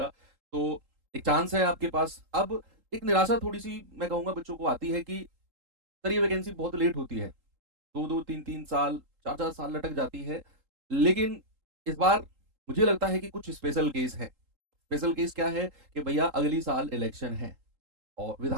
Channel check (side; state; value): left; late; 3.8 ms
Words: तो एक चांस है आपके पास। अब एक निराशा थोड़ी सी मैं कहूँगा बच्चों को आती है कि सर ये वैकेंसी बहुत लेट होती है, 2-2 3-3 साल, 4-4 साल लटक जाती है। लेकिन इस बार मुझे लगता है कि कुछ स्पेशल केस है। स्पेशल केस क्या है कि भैया अगली साल इलेक्शन है, और